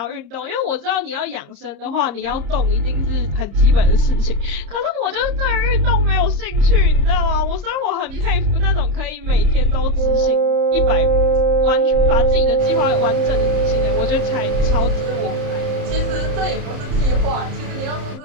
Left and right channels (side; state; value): left; late; 30 ms